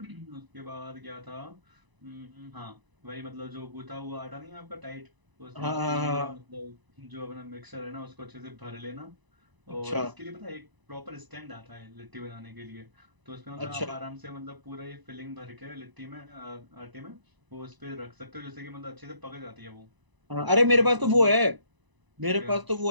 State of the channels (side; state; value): left; late; 1.0 ms